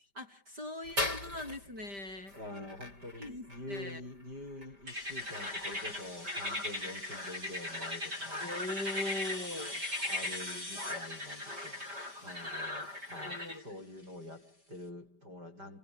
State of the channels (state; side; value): late; left; 5.1 ms